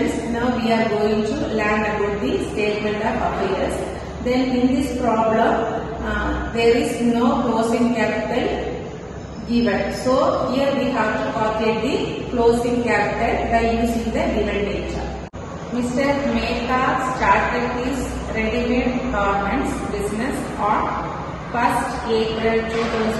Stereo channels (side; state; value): both; identical; correlation 1.00